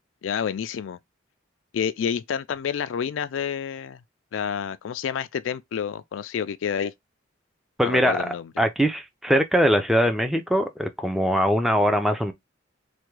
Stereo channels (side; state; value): both; normal; correlation 0.62